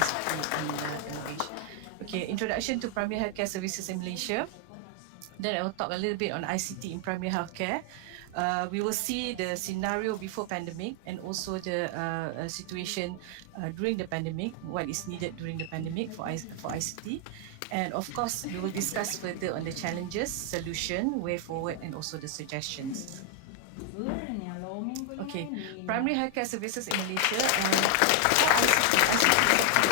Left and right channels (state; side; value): different; both; correlation 0.00